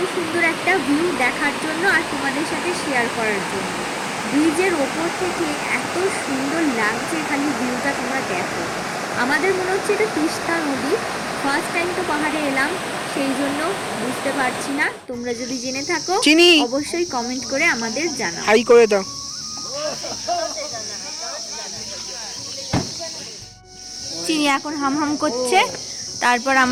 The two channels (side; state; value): both; identical; correlation 1.00